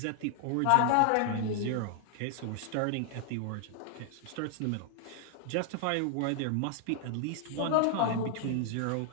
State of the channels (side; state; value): both; different; correlation 0.00